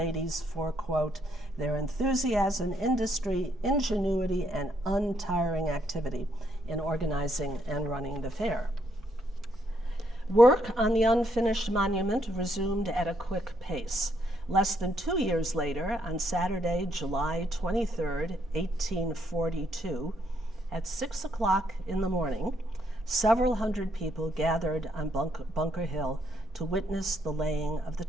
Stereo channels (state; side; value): normal; both; correlation 0.73